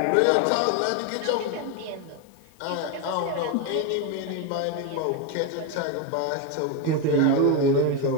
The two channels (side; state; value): both; different; correlation 0.02